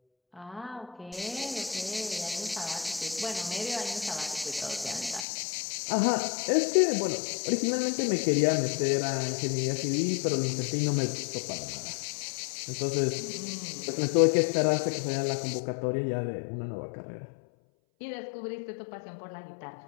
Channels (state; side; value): drops out; right; at 5.2 s